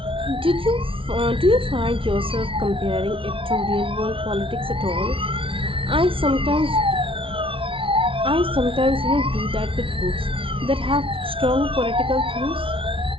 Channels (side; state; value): left; late; 0.25 ms